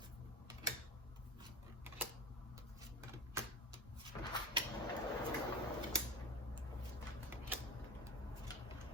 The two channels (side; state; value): both; normal; correlation 0.29